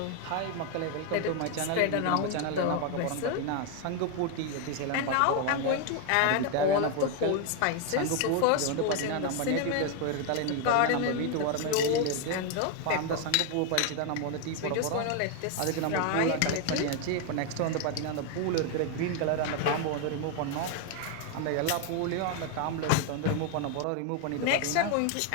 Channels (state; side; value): different; both; correlation 0.01